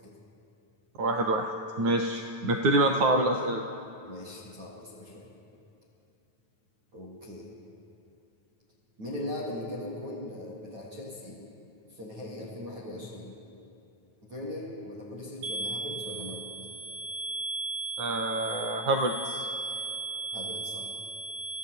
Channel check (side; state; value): left; late; 9.3 ms